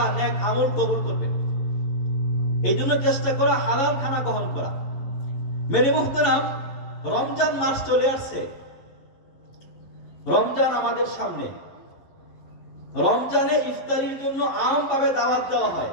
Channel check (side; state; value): right; late; 11 ms